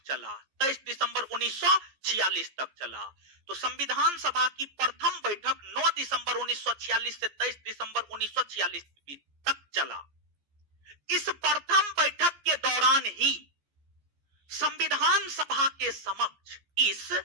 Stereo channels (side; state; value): left; late; 14 ms